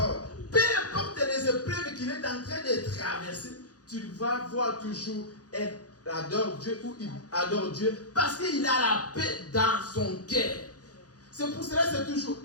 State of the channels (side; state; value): right; late; 0.68 ms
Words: peu importe les épreuves qu'il est en train de traverser, tu vas voir toujours il adore Dieu ou il adore Dieu parce qu'il a la paix dans son cœur. C'est pour cela que c'est toujours